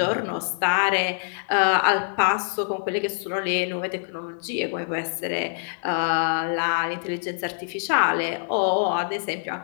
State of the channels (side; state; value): right; silent; digital silence